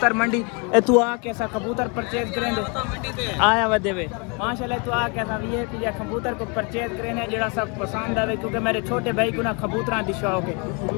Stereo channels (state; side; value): quieter; right; 33.1 dB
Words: मंडी। तू आ कैसा कबूतर परचेज करेंगे आया वदे वे माशाल्लाह। तू आ कैसा ये कि कबूतर को परचेज करें जरा सब पसंद आवे क्योंकि मेरे छोटे भाई को ना कबूतर दी शौक है